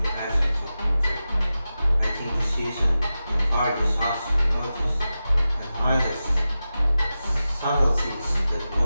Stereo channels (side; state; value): both; inverted; correlation -0.93